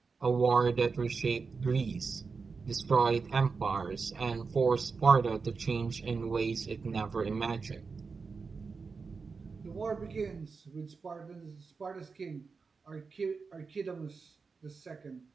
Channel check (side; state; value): left; quieter; 4.8 dB